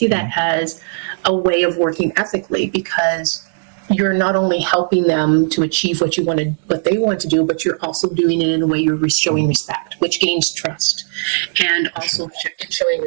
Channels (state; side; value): silent; left; digital silence